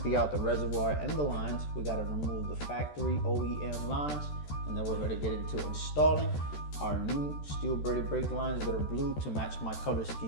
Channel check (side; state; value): right; late; 13 ms